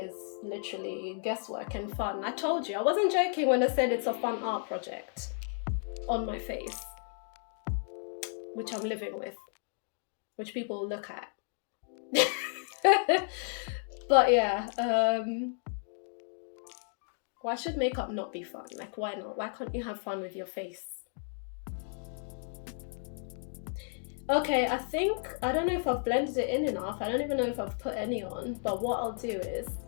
literally guesswork and fun. I told you, I wasn't joking when I said it's a fun art project on my face, which I'm living with, which people look at. But yeah, why should makeup not be fun? Like, why not? Why can't you have fun with your face? Okay, I don't know if I've blended it in enough. I don't even know if I've put any on, but what I'll do is,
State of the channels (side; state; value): right; silent; 56 dB below the other